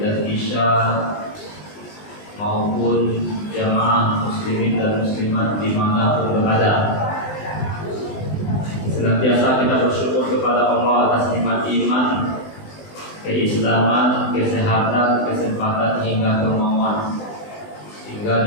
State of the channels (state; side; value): late; right; 20 ms